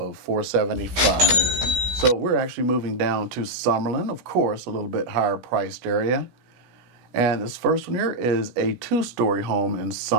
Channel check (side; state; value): left; late; 17 ms